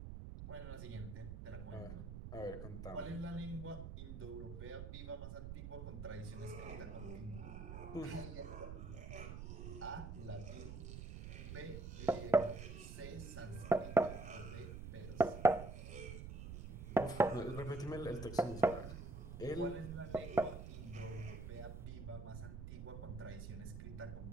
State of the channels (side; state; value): right; noise; rumble, 8 dB below the sound